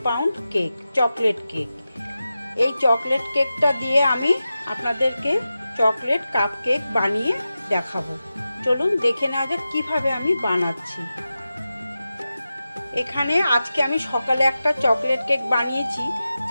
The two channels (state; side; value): inverted; both; correlation -0.93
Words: পাউন্ড কেক, চকলেট কেক। এই চকলেট কেকটা দিয়ে আমি আপনাদেরকে চকলেট কাপ কেক বানিয়ে দেখাবো। চলুন দেখে নেওয়া যাক কীভাবে আমি বানাচ্ছি। এখানে আজকে আমি সকালে একটা চকলেট কেক বানিয়েছি,